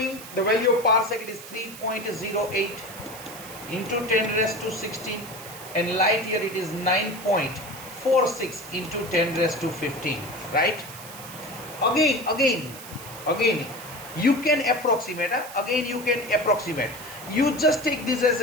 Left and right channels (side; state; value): right; noise; hiss, 14 dB below the sound